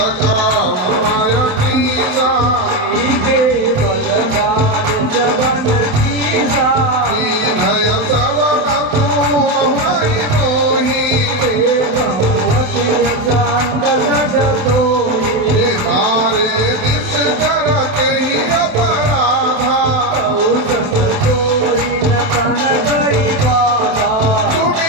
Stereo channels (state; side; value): late; left; 28 ms